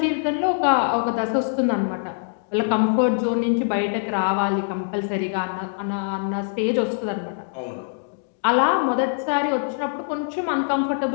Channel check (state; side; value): silent; right; digital silence